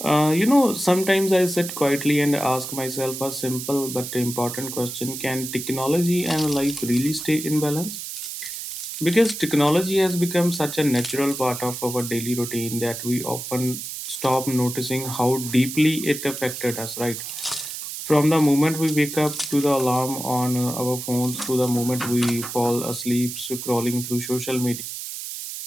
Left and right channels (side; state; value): right; noise; hiss, 7 dB below the sound